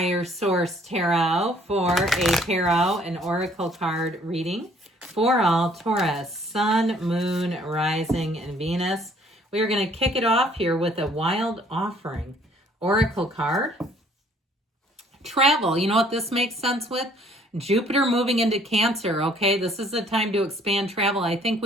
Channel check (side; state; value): both; normal; correlation 0.60